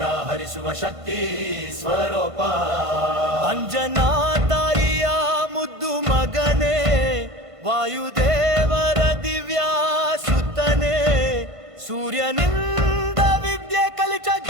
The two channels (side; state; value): left; late; 1.5 ms